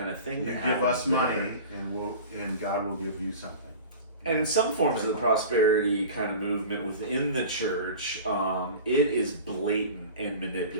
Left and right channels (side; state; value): both; inverted; correlation -0.37